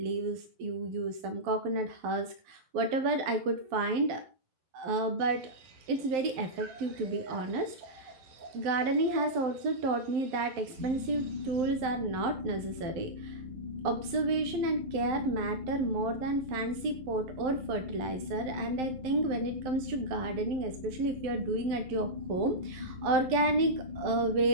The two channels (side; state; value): left; late; 11 ms